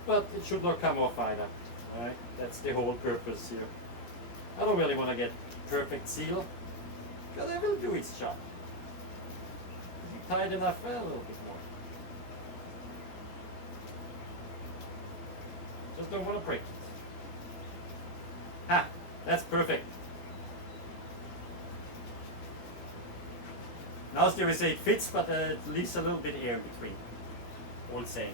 But it should not come off either, right? That's the whole purpose here. I don't really want to get perfect seal because it will do its job. Is it tight enough? Well, a little bit more. Just don't want to break it. Ha! That's perfect. Now still we say it fits, but it leaves a little bit air in between. Old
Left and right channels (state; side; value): late; right; 17 ms